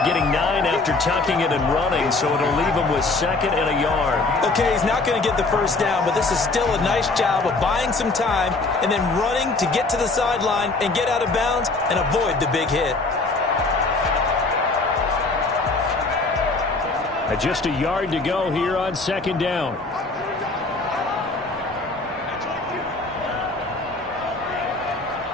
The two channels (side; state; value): right; quieter; 3.5 dB